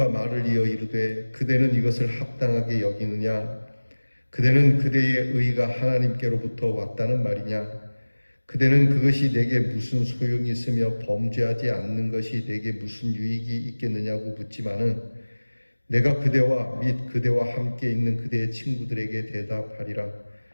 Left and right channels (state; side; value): inverted; both; correlation -1.00